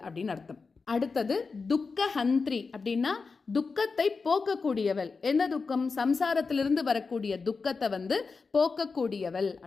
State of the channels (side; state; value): right; quieter; 4.6 dB